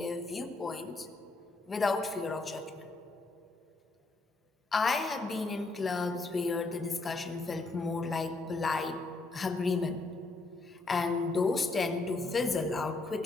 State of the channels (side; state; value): right; quieter; 3.4 dB